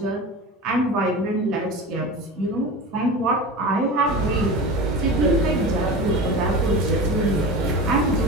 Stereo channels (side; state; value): both; normal; correlation 0.30